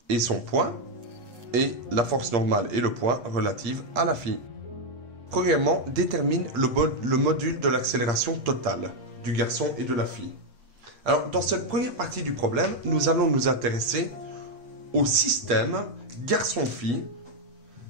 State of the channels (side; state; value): left; late; 8.5 ms